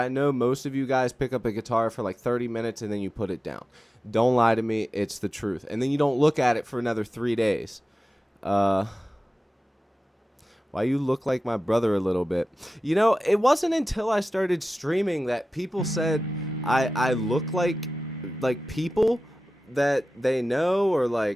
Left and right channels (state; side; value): normal; both; correlation 0.95